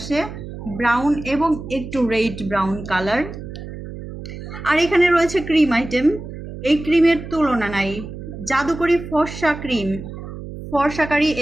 ব্রাউন এবং একটু রেড ব্রাউন কালার। আর এখানে রয়েছে ক্রিম আইটেম। এই ক্রিমের তুলনা নাই, জাদুকরি ফর্সা ক্রিম। ফর্সাকারী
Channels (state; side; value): noise; right; hum, 11 dB below the sound